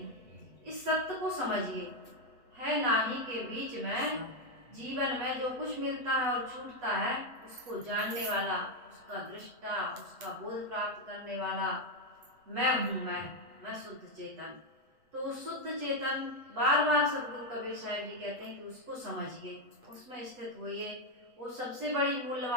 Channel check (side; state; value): left; late; 8.1 ms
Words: इस सत्य को समझिए, है नाही के बीच में जीवन में जो कुछ मिलता है और छूटता है, उसको जानने वाला, उसका दृष्टा, उसका बोध प्राप्त करने वाला मैं हूँ, मैं शुद्ध चेतन। तो उस शुद्ध चेतन, बार बार सदगुरु कबीर साहब जी कहते हैं कि उसको समझिए, उसमें स्थित होइए, वो सबसे बड़ी